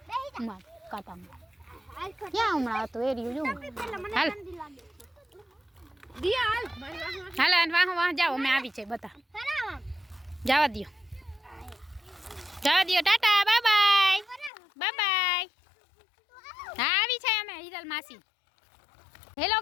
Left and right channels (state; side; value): drops out; right; at 14.5 s